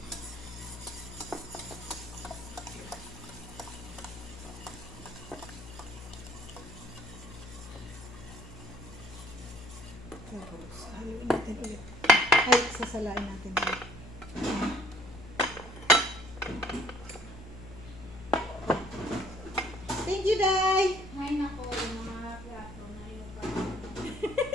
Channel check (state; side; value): noise; left; hum, 15 dB below the sound